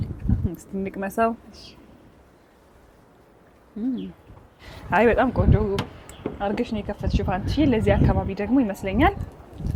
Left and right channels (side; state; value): both; identical; correlation 1.00